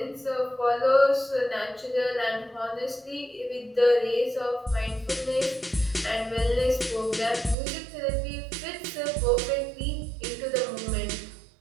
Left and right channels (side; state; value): left; drops out; at 7.6 s